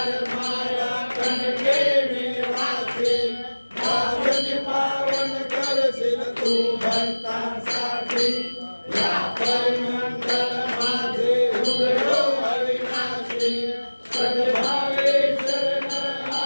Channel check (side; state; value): both; inverted; correlation -1.00